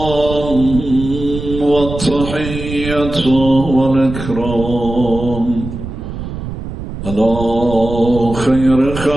والتحية والإكرام على خير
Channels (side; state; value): right; noise; rumble, 8 dB below the sound